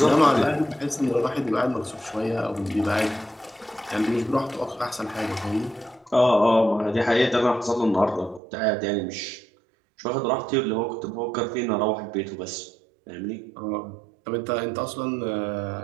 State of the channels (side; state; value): left; drops out; at 8.4 s